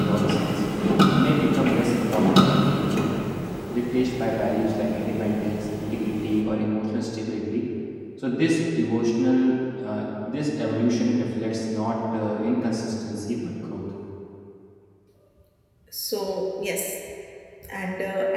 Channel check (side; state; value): both; identical; correlation 1.00